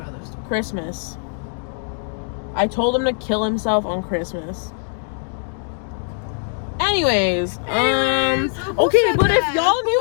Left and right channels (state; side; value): silent; right; 64 dB below the other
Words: other stuff. Christmas. I told him to kill himself on Christmas. Anyways, okay, but if y'all